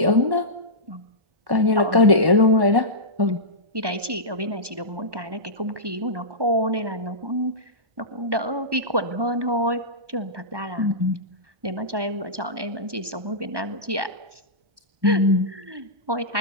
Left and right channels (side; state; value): left; late; 1.2 ms